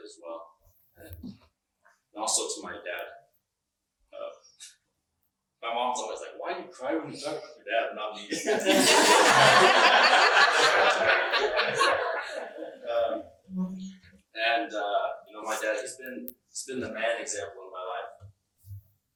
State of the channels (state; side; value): identical; both; correlation 1.00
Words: as well. And also to my dad. My mom's always like, "Why do you cry when you talk about your dad, not me?" My dad, he's been the man example in my life.